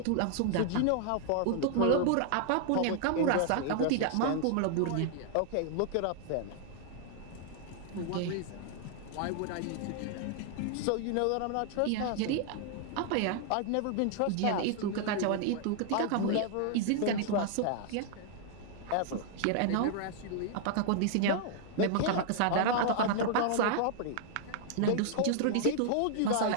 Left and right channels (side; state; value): both; different; correlation -0.01